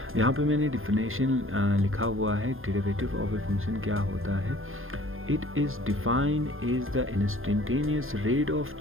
यहाँ पे मैंने डिफिनेशन लिखा हुआ है। डेरिवेटिव ऑफ ए फंक्शन क्या होता है? It is defined as the instantaneous rate of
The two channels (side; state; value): left; late; 0.60 ms